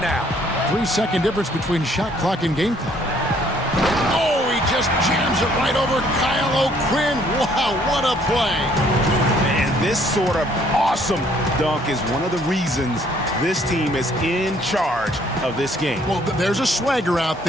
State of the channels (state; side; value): normal; both; correlation 0.63